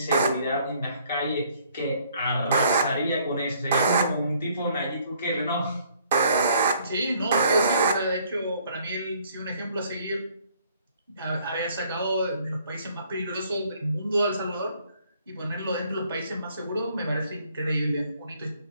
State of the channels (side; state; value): both; inverted; correlation -0.63